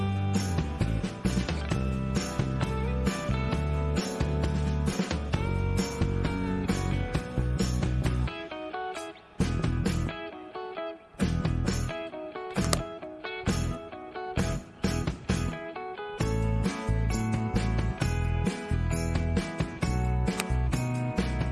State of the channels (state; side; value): identical; both; correlation 1.00